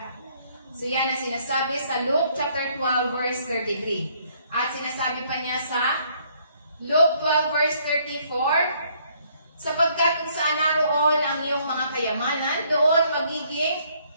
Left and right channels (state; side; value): inverted; both; correlation -0.65